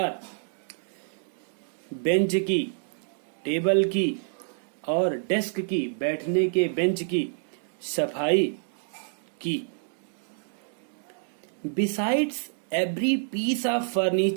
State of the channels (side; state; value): left; silent; digital silence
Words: बेंच की, टेबल की और डेस्क की, बैठने के बेंच की सफाई की। Besides every piece of